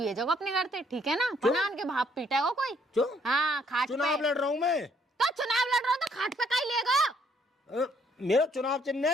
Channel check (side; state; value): both; normal; correlation 0.67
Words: अपने घर से, ठीक है ना? पनान के भाप पीटेगा कोई। क्यों? हाँ खाट पे। चुनाव लड़ रहा हूँ मैं। तो चुनाव लड़ रहा हो तो खाट पे का ही लेगा? मेरा चुनाव चिन्ह